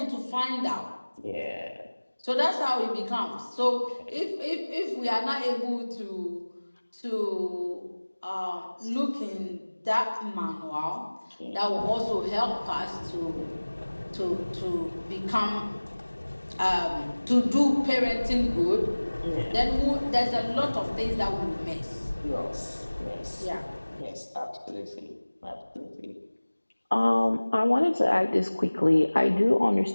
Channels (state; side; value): inverted; both; correlation -1.00